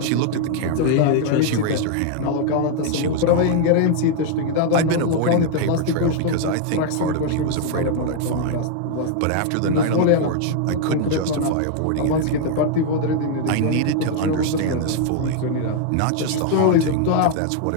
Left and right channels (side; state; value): both; different; correlation 0.00